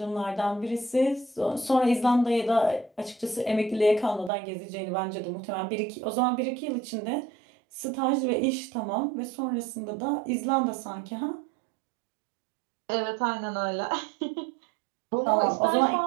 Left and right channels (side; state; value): left; drops out; at 4.3 s